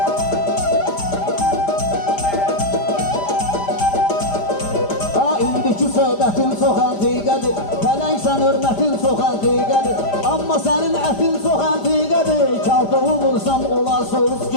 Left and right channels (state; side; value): late; right; 5.0 ms